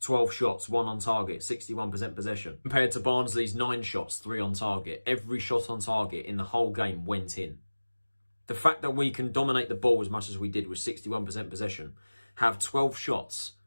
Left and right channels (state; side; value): inverted; both; correlation -1.00